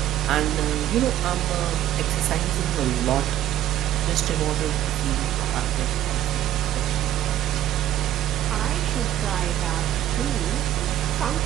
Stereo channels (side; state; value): left; quieter; 12.7 dB